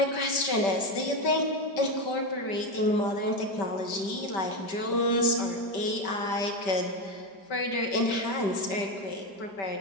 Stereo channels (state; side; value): late; right; 5.1 ms